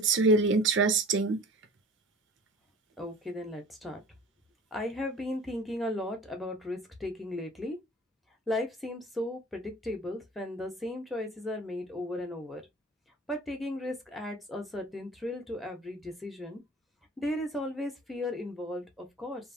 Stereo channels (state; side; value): normal; both; correlation 0.43